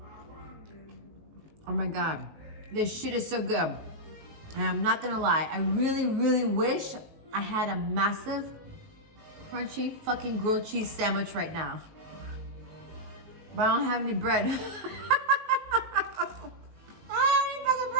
Oh my God, this shit is so good. And I'm not gonna lie, I really, really wish I had a massive, crunchy, fucking grilled cheese sandwich right now. But I don't have any bread. I don't have any fucking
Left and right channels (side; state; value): left; late; 19 ms